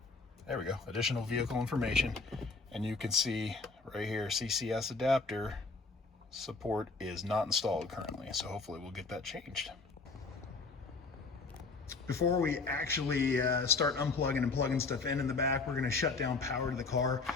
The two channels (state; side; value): quieter; right; 4.0 dB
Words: There we go, additional vehicle information. And you can see right here, CCS Adapter support is not installed currently. So hopefully we'll get that changed. Before we actually start unplugging and plugging stuff in the back, we're gonna shut down power to the car.